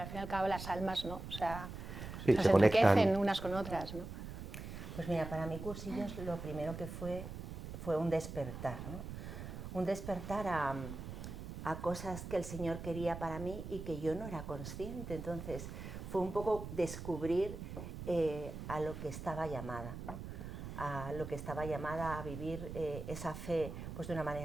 al fin y al cabo las almas, ¿no? O sea, Sí, se se enriquecen conectan. unas con otras, ¿no? Pues mira, para mí cursillos lo primero que fue un despertar, ¿no? Un despertar a cosas que el Señor quería para mí y que yo no era consciente. Entonces fue un poco descubrir a lo que estaba llamada, ¿no? A lo que estaba llamada a vivir esa fe pues de una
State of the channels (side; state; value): right; noise; rumble, 8 dB below the sound